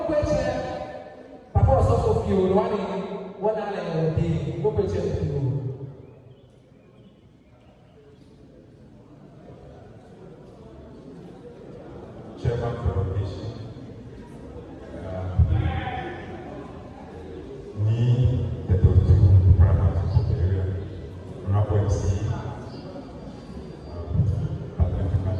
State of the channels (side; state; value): both; identical; correlation 1.00